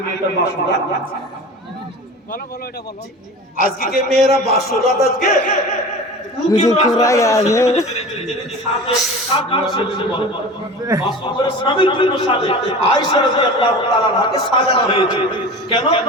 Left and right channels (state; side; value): normal; both; correlation 0.35